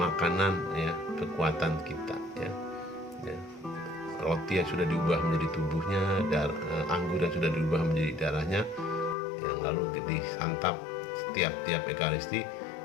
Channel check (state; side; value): drops out; right; at 9.2 s